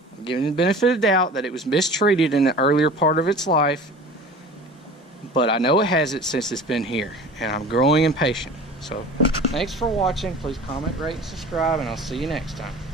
I'm giving it the benefit of the doubt that it was mistreated in the earlier part of its life. But I know it hasn't since it's been here, and I'm growing impatient. So thanks for watching. Please comment, rate, and subscribe, and I'll see you next time.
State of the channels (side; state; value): both; normal; correlation 0.40